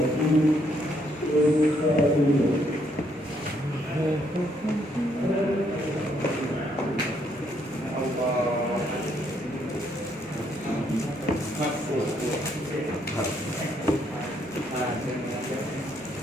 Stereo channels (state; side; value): noise; right; rumble, 29 dB below the sound